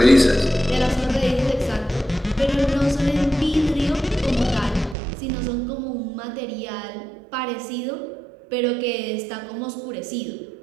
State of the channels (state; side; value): drops out; left; at 5.0 s